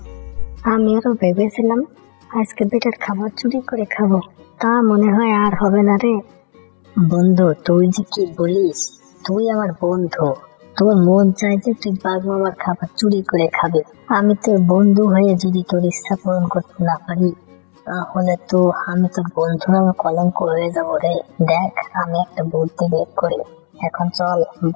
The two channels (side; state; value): right; silent; 69 dB below the other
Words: আমি আরো ভেবেছিলাম আজকে বেটার খাবার চুরি করে খাবো, তা মনে হয় আর হবে না রে। বন্ধু তুই যে কি বলিস, তুই আমার বন্ধু, তোর মন চাই যে তুই বাঘ মামার খাবার চুরি করে খাবে। আমি তোর বন্ধু হয়ে যদি তোর ইচ্ছা পূরণ করতে না পারি, তাহলে তো আমি তোর বন্ধু নামে কলঙ্ক হয়ে যাবো রে। দেখ, আমি একটা বুদ্ধি বের করি, এখন চল